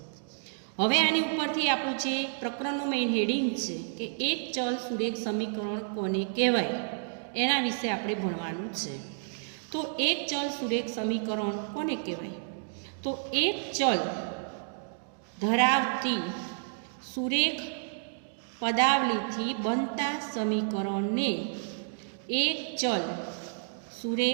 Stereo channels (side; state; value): left; silent; digital silence